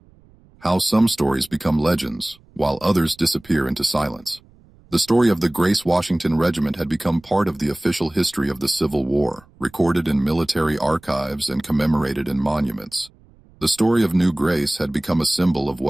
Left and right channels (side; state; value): right; noise; rumble, 28 dB below the sound